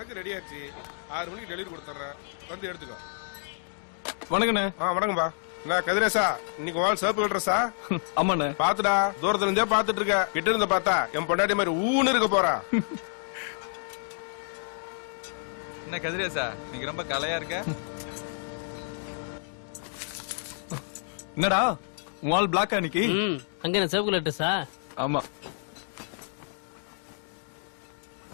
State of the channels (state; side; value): silent; right; digital silence